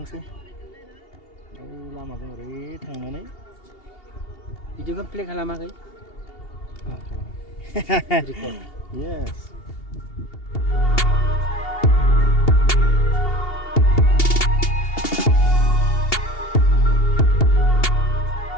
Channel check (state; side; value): late; right; 2.8 ms